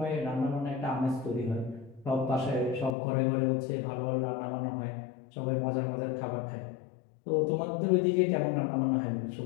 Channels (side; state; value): right; drops out; at 3.0 s